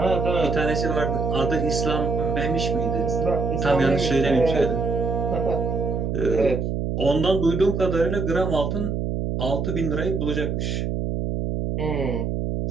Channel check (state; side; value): noise; right; hum, 1 dB below the sound